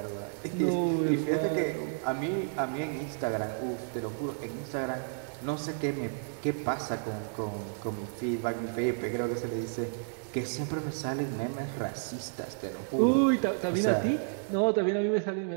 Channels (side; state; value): left; silent; 57 dB below the other